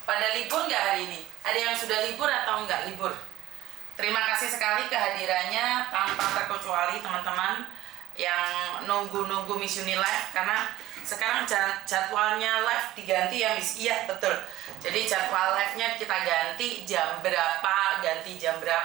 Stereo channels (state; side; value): quieter; left; 15.5 dB